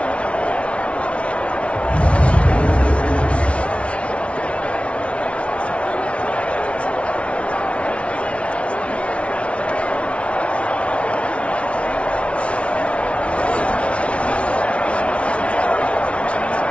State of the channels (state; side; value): late; right; 0.061 ms